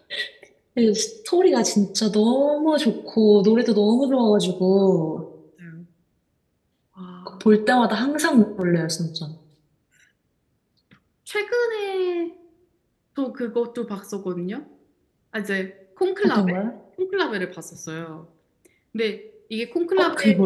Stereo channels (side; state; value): both; identical; correlation 1.00